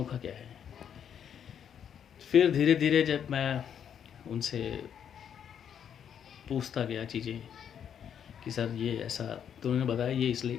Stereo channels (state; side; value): quieter; right; 8.6 dB